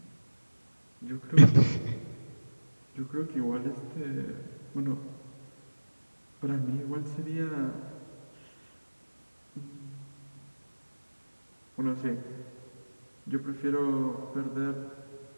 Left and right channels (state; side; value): inverted; both; correlation -1.00